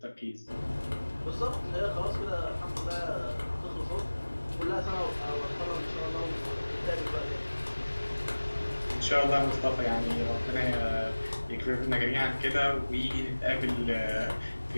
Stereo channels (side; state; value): both; inverted; correlation -1.00